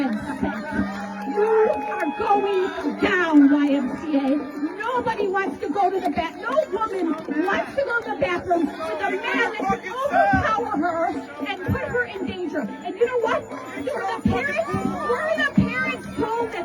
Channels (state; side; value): identical; both; correlation 1.00